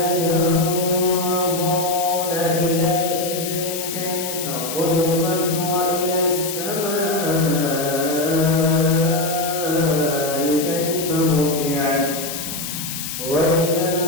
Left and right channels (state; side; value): noise; left; hiss, 6 dB below the sound